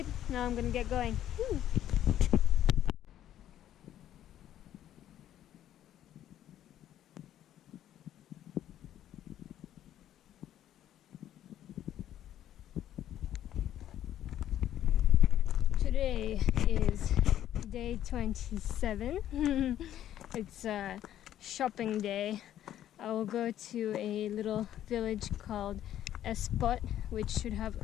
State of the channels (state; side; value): quieter; right; 11.6 dB